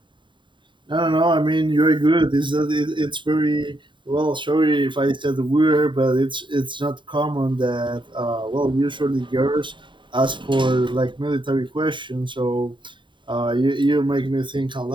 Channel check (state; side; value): late; left; 0.23 ms